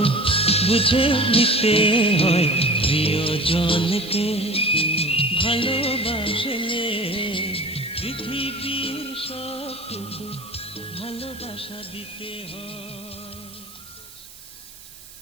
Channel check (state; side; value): noise; right; hiss, 19 dB below the sound